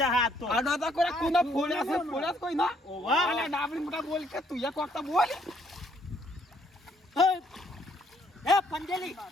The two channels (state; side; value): normal; both; correlation 0.67